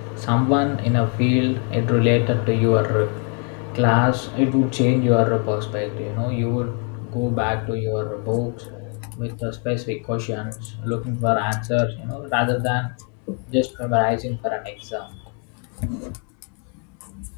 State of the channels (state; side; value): quieter; right; 39.6 dB